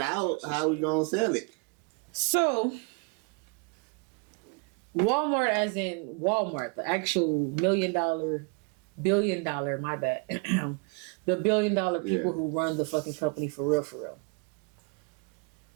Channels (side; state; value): left; quieter; 33.5 dB